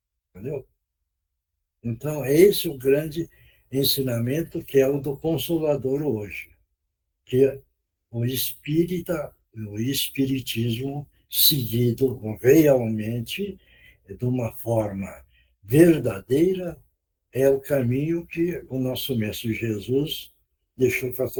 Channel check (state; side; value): identical; both; correlation 1.00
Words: entendeu? Então, é esse o grande ensinamento que é o do Consolador hoje, que o o espiritismo seguido realmente de uma forma verdadeira é o caminho que o nosso Mestre Jesus deixou para